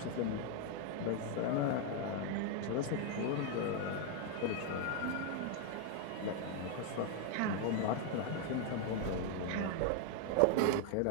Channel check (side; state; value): both; different; correlation 0.01